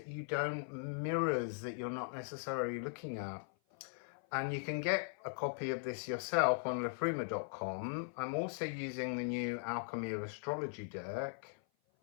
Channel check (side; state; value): right; silent; 51 dB below the other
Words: you don't, mirrors that you're not necessarily looking at. And you can get a copy of this yourself on liffruma.com. I'm also using the new Alchemy of Astrology deck.